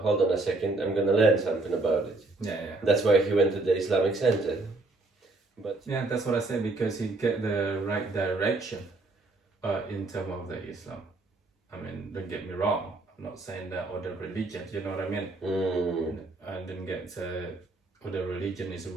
on a second, I'm gonna learn something about it. Yeah. That's why he went to the Islamic Center. But yeah, that's what I say, because he get the right direction in terms of the Islam. I mean, don't get me wrong, I'm not saying that other religions, you know what I mean? I didn't get other religion is the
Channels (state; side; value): quieter; left; 3.2 dB